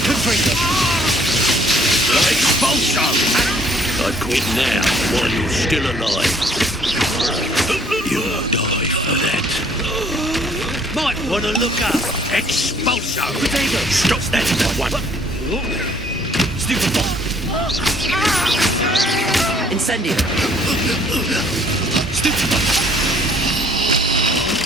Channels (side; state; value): both; normal; correlation 0.60